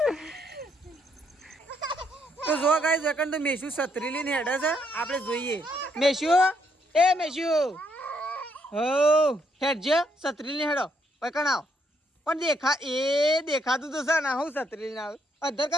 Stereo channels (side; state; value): both; normal; correlation 0.74